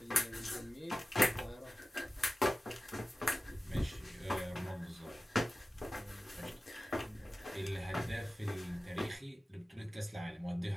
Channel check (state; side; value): normal; both; correlation 0.95